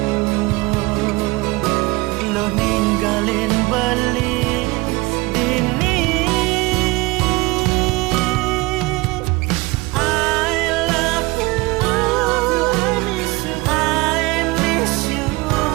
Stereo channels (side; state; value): left; quieter; 22.9 dB